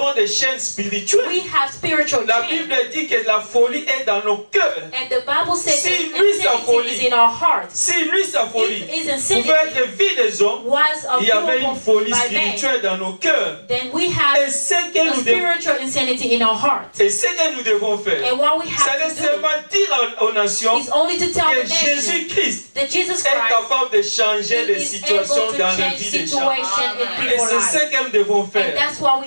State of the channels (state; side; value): inverted; both; correlation -1.00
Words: des chaînes spirituelles. we have spiritual La chains. Bible dit que la folie est dans nos cœurs. And the Bible says Si that lui, sa insanity folie, is in our hearts. Si lui, sa folie, If his insanity pouvait être vie des hommes, was il y avait une available folie by man, spirituelle dans nos cœurs. then we Et have ce a que nous devons, spiritual insanity in our hearts. et ce que nous devons faire, And what we c'est have de to do seulement dire aux nations is only to tell que the nation Jésus-Christ that Jesus est Christ capable de changer les is situations able to dans la change vie des gens. situation in Et people's c'est ce lives. que nous devons And faire. that's what